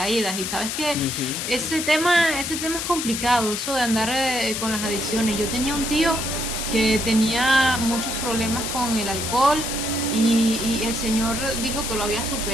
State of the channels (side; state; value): left; noise; hiss, 3 dB below the sound